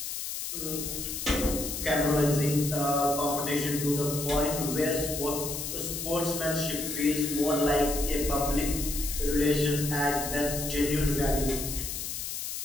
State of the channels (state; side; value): noise; left; hiss, 5 dB below the sound